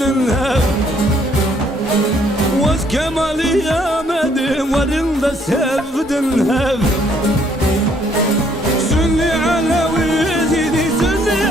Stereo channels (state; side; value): normal; both; correlation 0.66